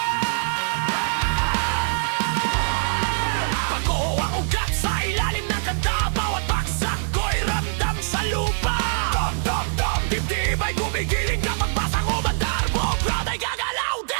Pag-uho ang ugat sa ilalim ng kanta, bawat baksak ko'y ramdam sa lupa. Dom, dom, dibdib ay gumigiling kapag basang umandar, buong crowd ay gagalaw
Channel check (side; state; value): left; silent; digital silence